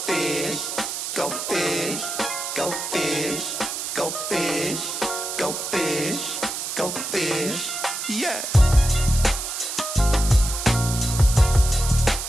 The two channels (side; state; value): right; noise; hiss, 5 dB below the sound